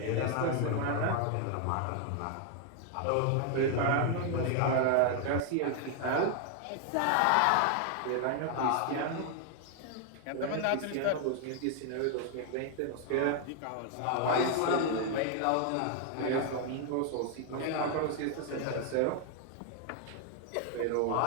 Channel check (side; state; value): both; different; correlation 0.00